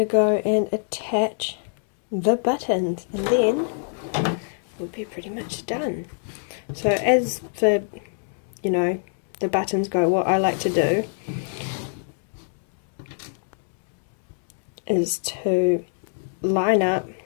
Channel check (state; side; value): silent; right; 63 dB below the other